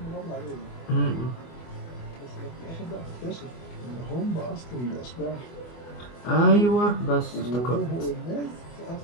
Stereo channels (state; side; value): late; right; 24 ms